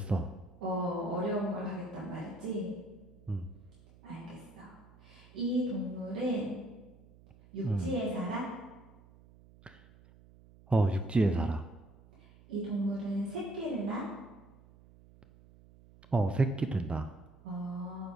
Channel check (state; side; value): noise; right; hum, 24 dB below the sound